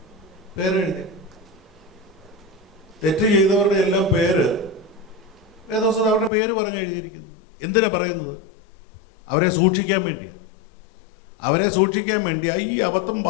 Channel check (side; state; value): right; drops out; at 6.3 s